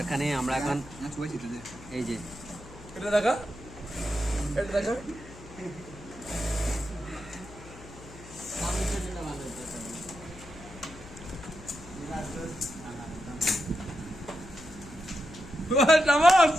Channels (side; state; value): left; noise; hum, 17 dB below the sound